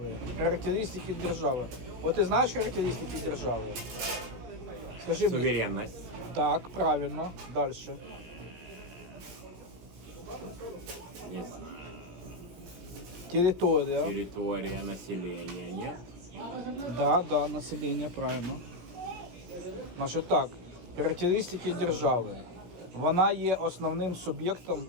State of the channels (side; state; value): left; late; 17 ms